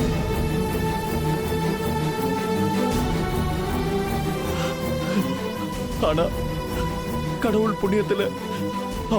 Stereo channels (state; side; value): identical; both; correlation 1.00